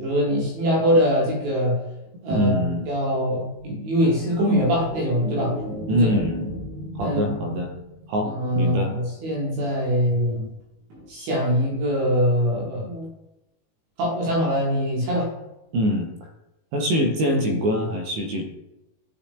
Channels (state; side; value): late; left; 19 ms